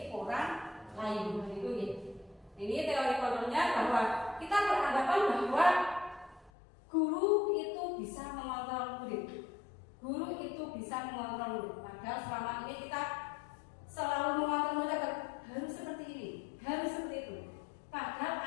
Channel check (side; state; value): right; drops out; at 6.5 s